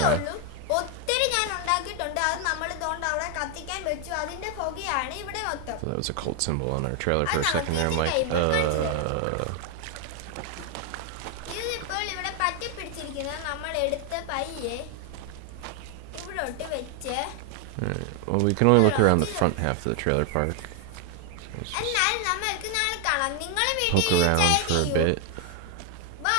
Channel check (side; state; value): both; different; correlation 0.01